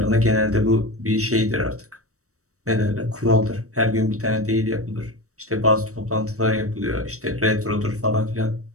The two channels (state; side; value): late; left; 0.65 ms